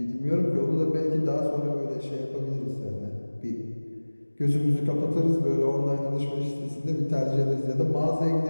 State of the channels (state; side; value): inverted; both; correlation -1.00